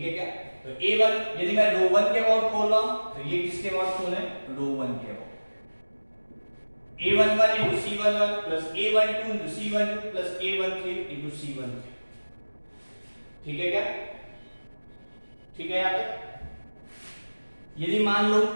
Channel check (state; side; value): inverted; both; correlation -1.00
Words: है क्या। तो A1, यदि मैं रो 1 के अबाउट खोल रहा हूं तो ये किसके अबाउट खोले, रो 1 के about, A11 into C11 plus A12 into C12 plus A13 into C13, ठीक है क्या, ठीक है। यहाँ तक यदि मान लो,